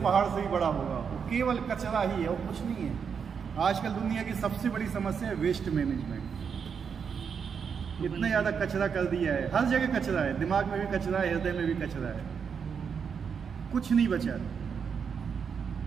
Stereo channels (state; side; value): quieter; left; 6.6 dB